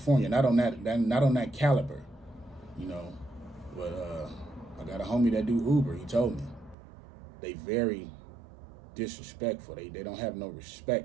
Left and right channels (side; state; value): left; drops out; at 6.8 s